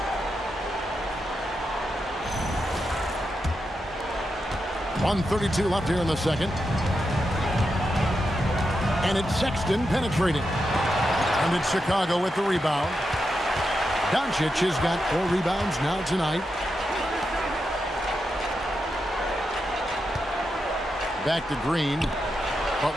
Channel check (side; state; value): both; normal; correlation 0.86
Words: .132 left here in the second. And it's Sexton penetrating. And it's Chicago with the rebound. Doncic has got 4 rebounds now tonight. Back to Green.